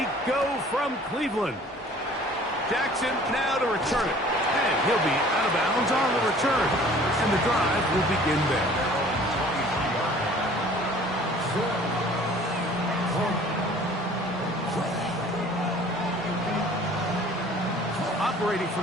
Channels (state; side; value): normal; both; correlation 0.50